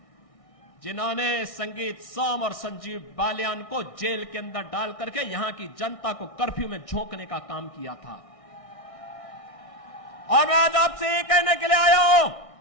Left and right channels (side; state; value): right; late; 1.6 ms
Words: जिन्होंने संगीत सोम और संजीव बालियान को जेल के अंदर डाल करके यहां की जनता को कर्फ्यू में झोंकने का काम किया था। और मैं आज आपसे ये कहने के लिए आया हूं,